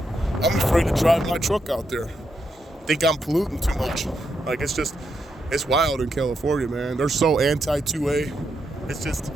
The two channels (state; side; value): normal; both; correlation 0.82